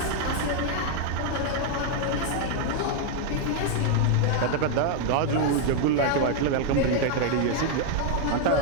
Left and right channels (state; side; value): different; both; correlation 0.00